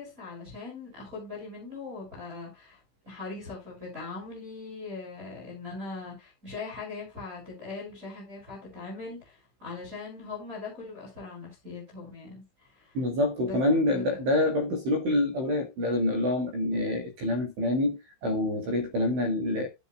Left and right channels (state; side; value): late; left; 15 ms